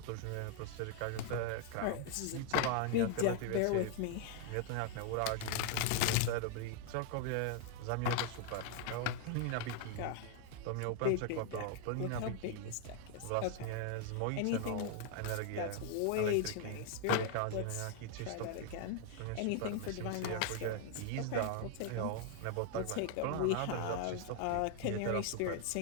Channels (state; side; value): different; both; correlation 0.00